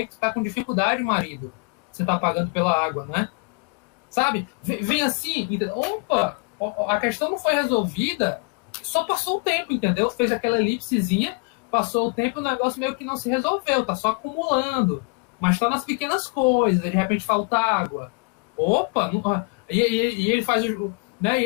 que tu tá com dificuldade, marido. Você tá pagando pela água, né? Sabe? Vem assim, entendeu? Opa, a questão não foi resolvida, só passou o tempo, entendeu? Fez aquela elipsezinha, passou o tempo e o negócio meio que não se resolveu, tá só acumulando. Mas tá nas pequenas coisas, de repente falta água. Opa, e ele faz né, e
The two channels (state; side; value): quieter; right; 33.8 dB